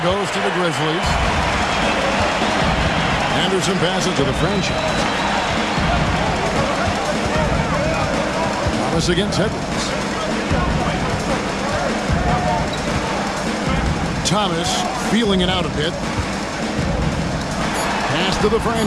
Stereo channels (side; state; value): both; identical; correlation 1.00